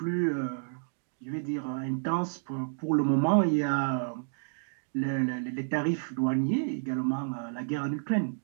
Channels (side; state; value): left; silent; digital silence